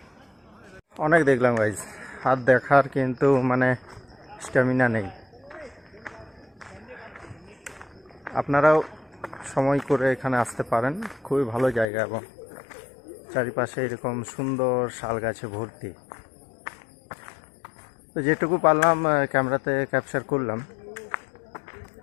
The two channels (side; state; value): right; drops out; at 11.9 s